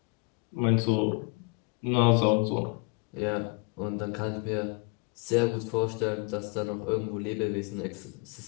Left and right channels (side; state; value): right; quieter; 30.0 dB